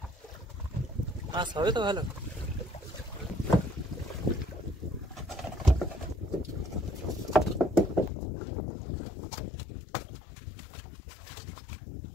মাছ হবে তো ভালো।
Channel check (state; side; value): drops out; right; at 8.1 s